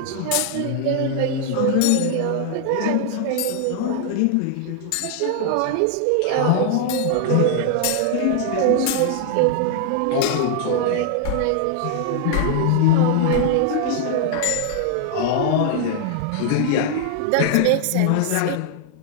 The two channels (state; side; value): different; both; correlation 0.00